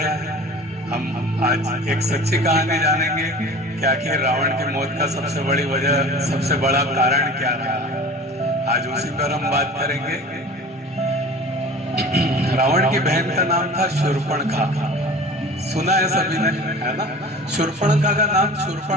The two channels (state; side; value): normal; both; correlation 0.40